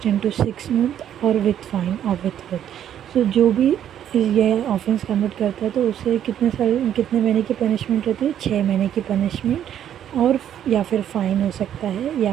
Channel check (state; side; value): quieter; left; 10.3 dB